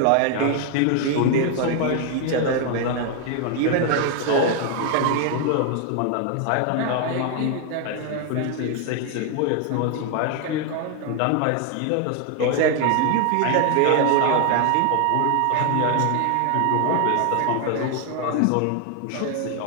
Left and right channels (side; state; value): both; different; correlation 0.01